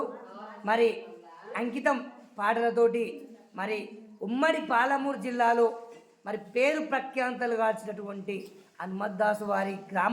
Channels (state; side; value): identical; both; correlation 1.00